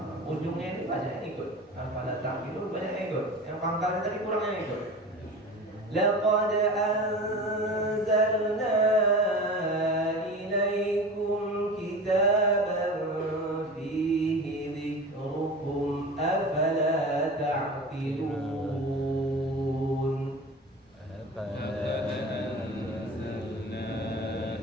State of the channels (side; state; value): both; normal; correlation 0.33